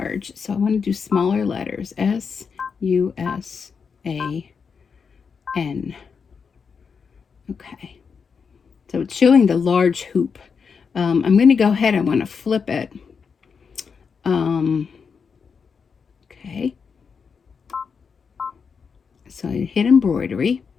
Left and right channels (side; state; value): right; quieter; 5.9 dB